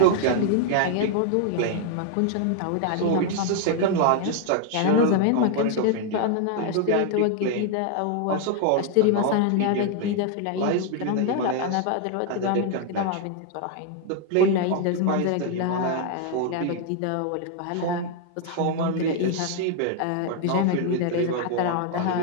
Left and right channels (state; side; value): different; both; correlation 0.00